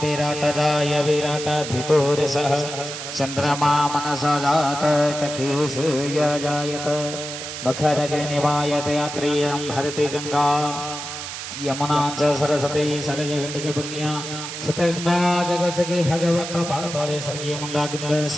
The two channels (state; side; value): noise; right; hiss, 8 dB below the sound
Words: विराटराय विराटाधिपुरसः चन्द्रमा मनसा जात चक्षुषूय जायत मखरग्निवायत यात्रियं भरति गंगा यमुना च सरस्वती सरजगण्डिके पुण्या शतगंगा जगत्सखे भगवत पादतले सर्गे मंगागिन्द